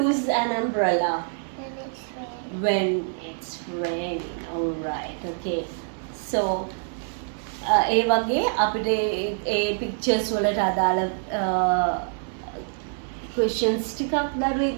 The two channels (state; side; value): silent; left; digital silence